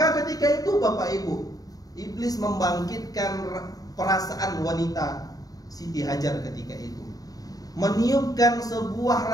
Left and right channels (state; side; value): late; right; 0.18 ms